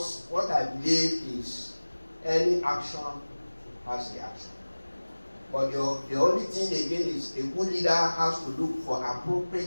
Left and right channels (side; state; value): both; inverted; correlation -1.00